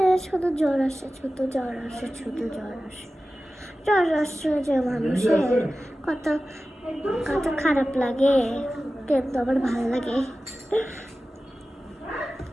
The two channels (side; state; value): both; normal; correlation 0.95